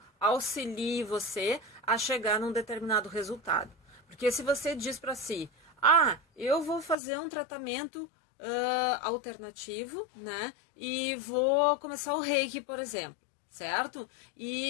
auxilie você a chegar num determinado resultado. Porque se você diz para si, eu vou fazer um tratamento alternativo, né? E vou começar o Reiki, por exemplo, certo?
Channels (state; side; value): drops out; right; at 7.0 s